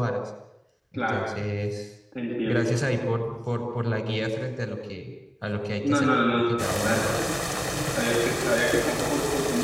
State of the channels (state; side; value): identical; both; correlation 1.00